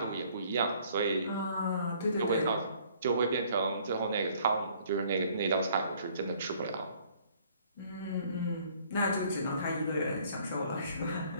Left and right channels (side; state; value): both; inverted; correlation -0.59